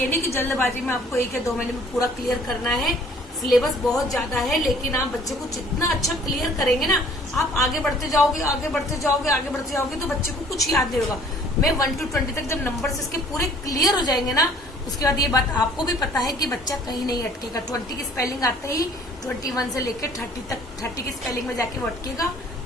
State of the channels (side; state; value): both; normal; correlation 0.54